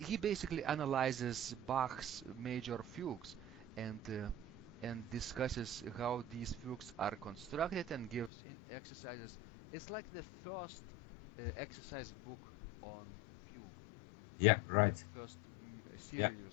basically analyzes Bach's major fugues and discusses how these fugues are constructed and gives exercises. It's like the first exercise book on fugue. Yeah, right. First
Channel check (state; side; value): drops out; right; at 8.3 s